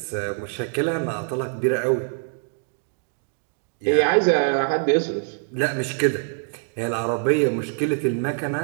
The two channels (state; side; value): silent; left; digital silence